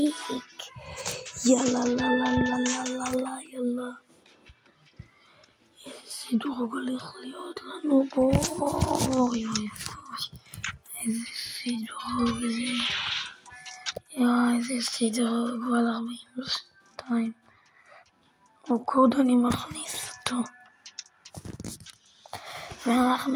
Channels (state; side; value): identical; both; correlation 1.00